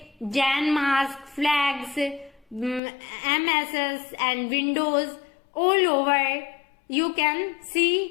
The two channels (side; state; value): right; drops out; at 2.8 s